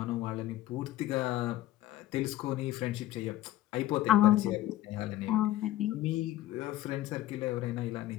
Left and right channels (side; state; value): right; quieter; 14.3 dB